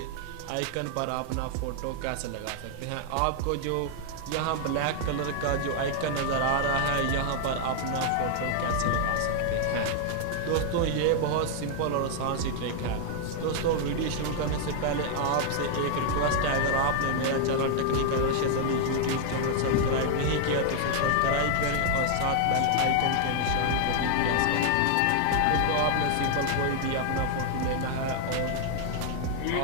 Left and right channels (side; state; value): both; different; correlation 0.00